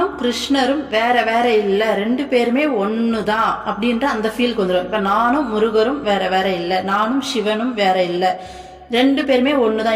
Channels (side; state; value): both; identical; correlation 1.00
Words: கிருஷ்ணரும் வேற வேற இல்ல, ரெண்டு பேருமே ஒண்ணுதான் அப்படின்ற அந்த ஃபீலுக்கு வந்துடும். இப்ப நானும் முருகரும் வேற வேற இல்ல, நானும் சிவனும் வேற இல்ல, ரெண்டு பேருமே